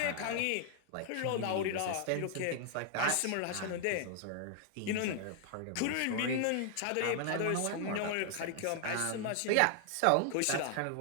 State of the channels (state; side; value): different; both; correlation 0.00